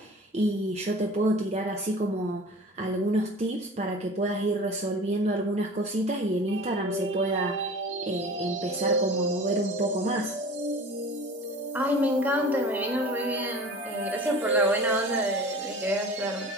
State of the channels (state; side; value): normal; both; correlation 0.40